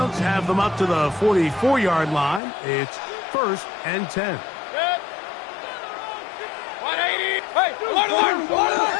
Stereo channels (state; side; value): drops out; right; at 2.4 s